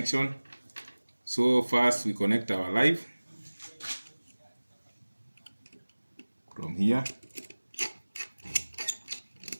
So first we connect our live from here.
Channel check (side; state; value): both; inverted; correlation -1.00